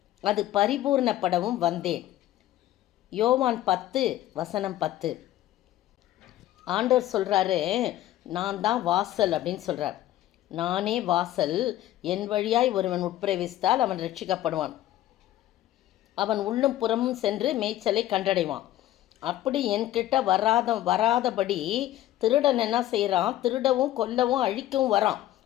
அது பரிபூர்ணப்படவும் வந்தேன். யோவான் 10:10. ஆண்டவர் சொல்கிறாரு, நான் தான் வாசல் அப்படின்னு சொல்கிறார். நானே வாசல், என் வழியாய் ஒருவன் உட்பிரவேசித்தால் அவன் ரட்சிக்கப்படுவான். அவன் உள்ளும் புறமும் சென்று மேய்ச்சலை கண்டடைவான். அப்படி என்கிட்ட வராதபடி திருடன் என்ன செய்கிறான்? திருடவும் கொல்லவும் அழிக்கவும் வரான்,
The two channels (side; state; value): right; quieter; 13.9 dB